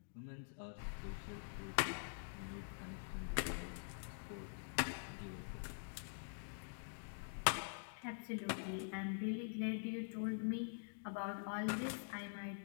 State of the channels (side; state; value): right; silent; digital silence